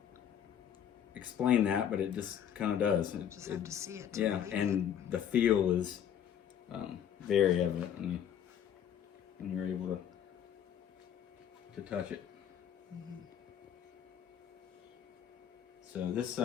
explain that, but it just kind of does. Just have to see it. Yeah, and the feel is very evident when you're able to touch it. Mm-hmm. So this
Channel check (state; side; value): quieter; right; 9.3 dB